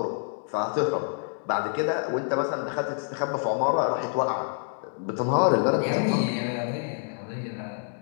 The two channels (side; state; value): right; silent; digital silence